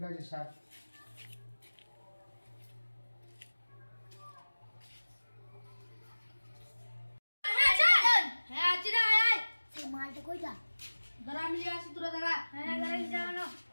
আছে স্যার। হ্যাঁ আছি রে, আয় আয়। সেই মালটা কইটা দাঁড়া, আমি নিয়ে আসি, তোরা দাঁড়া। হ্যাঁ গাড়ি যাও।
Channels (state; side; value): inverted; both; correlation -1.00